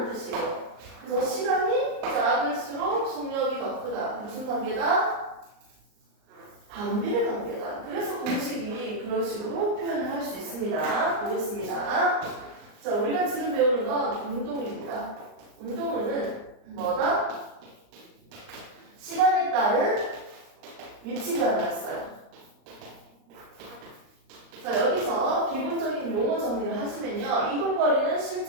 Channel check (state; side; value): late; left; 39 ms